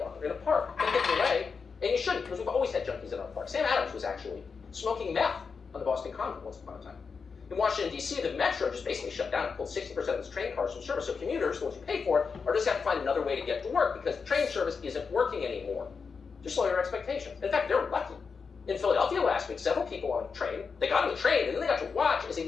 or in a park. They get in the way, and you shouldn't, because we've always had junkies in our park. Sam Adams was actually smoking meth on the Boston Common once upon a time. In Washington, D.C., the Metro just basically shut down and pulled 60% of its train cars from service. So commuters, the ones who pay for it, are just have to find another way to get to work because the train service isn't working anymore. Just lower your expectations. In fact, they're lucky. In Philadelphia last week, several people on a train, they got on the train and then they got to watch as a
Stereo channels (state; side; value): quieter; right; 5.4 dB